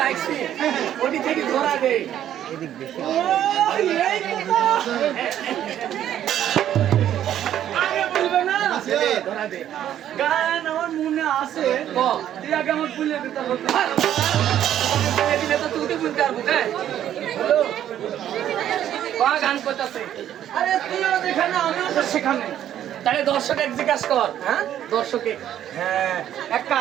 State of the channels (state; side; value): quieter; left; 11.0 dB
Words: ওটি থেকে ধরা দেই ও, এই কথা। আগে বলবে না ধরা দে গান আমার মনে আছে ক তুই আগে আমার ভুলে দিতে হবে দিলে তো তুই বুঝতে পারবো হ্যালো গান করতেছে আরে তুইও যেখানে আমিও তো সেখানে তাহলে দর্শক এক জিজ্ঞাসা কর হ্যাঁ দর্শকে হ্যাঁ এক